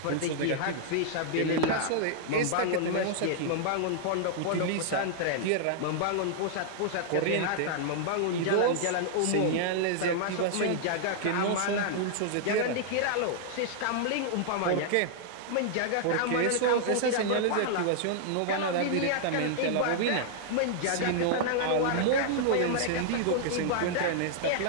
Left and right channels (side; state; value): both; different; correlation -0.01